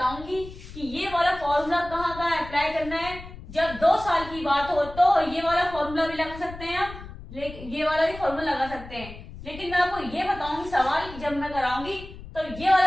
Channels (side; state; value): left; noise; rumble, 14 dB below the sound